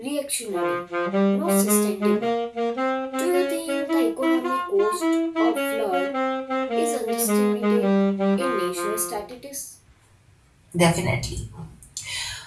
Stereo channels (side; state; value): both; identical; correlation 1.00